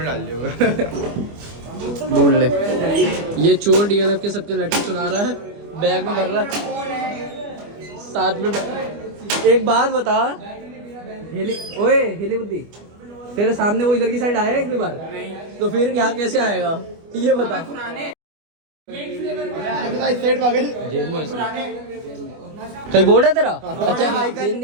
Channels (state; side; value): late; left; 25 ms